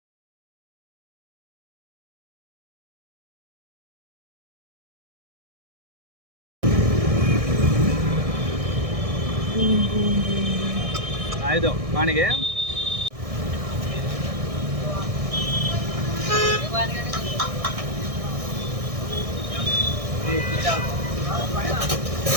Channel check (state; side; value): late; left; 1.6 ms